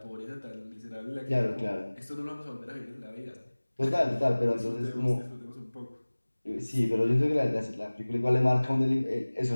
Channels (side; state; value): both; inverted; correlation -1.00